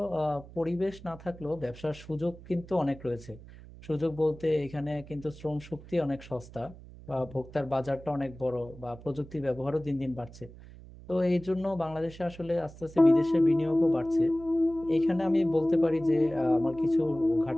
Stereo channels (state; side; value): noise; right; hum, 18 dB below the sound